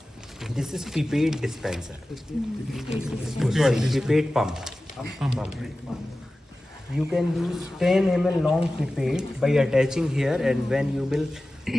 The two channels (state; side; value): normal; both; correlation 0.96